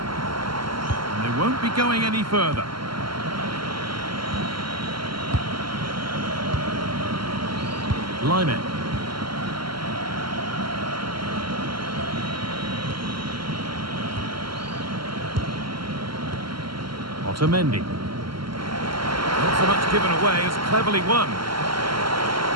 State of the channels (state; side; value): late; left; 0.73 ms